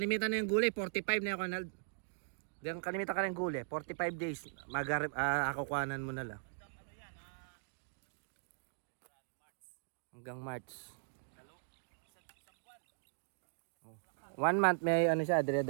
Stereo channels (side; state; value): left; silent; digital silence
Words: na yung gulay 45 na yan, Ronald. Diyan kalimitan ka ng gulay 45 days akukuhanan mo na lang. Hanggang March. 1 month may siya,